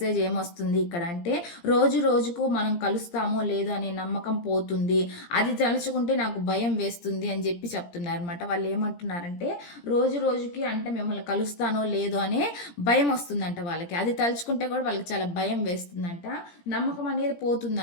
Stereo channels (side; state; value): right; late; 17 ms